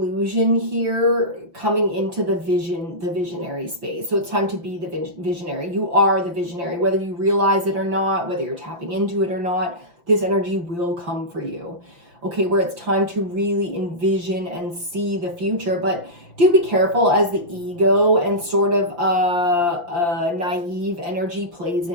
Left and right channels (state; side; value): late; left; 5.8 ms